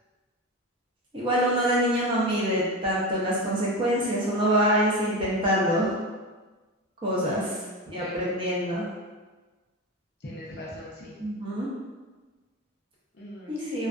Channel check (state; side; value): normal; both; correlation 0.22